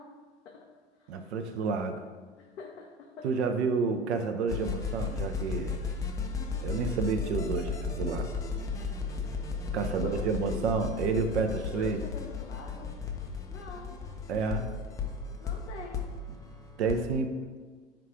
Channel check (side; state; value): both; normal; correlation 0.30